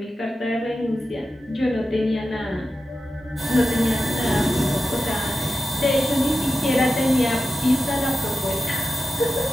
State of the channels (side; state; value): both; normal; correlation 0.91